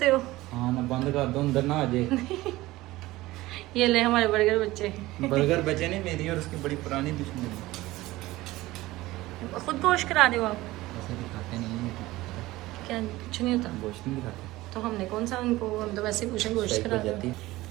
हो? हाँ ना बंद कर दो अंदर ना आ जाए। ये ले हमारे बर्गर बच्चे। बर्गर बचे नहीं, मेरी और उसकी बड़ी पुरानी दुश्मनी। खुद गोश्त करा रहे हो आप? ऐसे दिखाते नहीं हैं। क्या कुछ नहीं होता? गोश्त नहीं दिखाते तो हमने कौन सा उनको, हम तो वैसे पूछे गोश्त करा रहे हो।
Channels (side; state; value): left; quieter; 18.2 dB